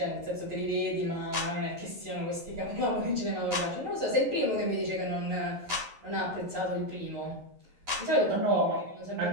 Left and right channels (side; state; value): left; late; 11 ms